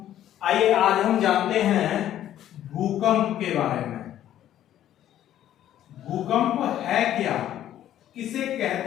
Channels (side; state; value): right; quieter; 11.8 dB